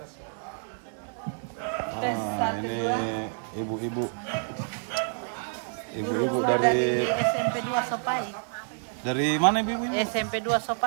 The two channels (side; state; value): left; silent; 59 dB below the other